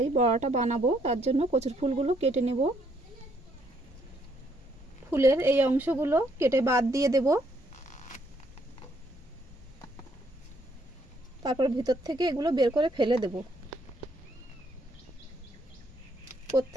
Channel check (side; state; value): both; normal; correlation 0.70